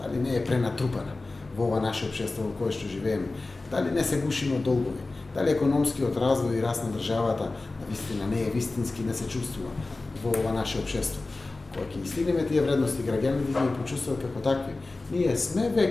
дали не е пренатрупана во ова наше општество во кое што живееме, дали не се гушиме од долгови, дали економскиот развој и раст на државата навистина не е вистински, не се чувствува во ова наше општество. Кога ќе стигнеме тие вредности, граѓаните ќе ги почувствуваат како такви. Ние сме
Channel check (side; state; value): right; quieter; 3.3 dB